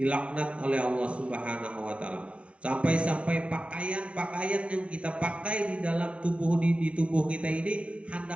oleh Allah Subhanahu wa taala. Sampai-sampai pakaian yang kita pakai di dalam tubuh di tubuh kita ini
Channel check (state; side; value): late; left; 0.061 ms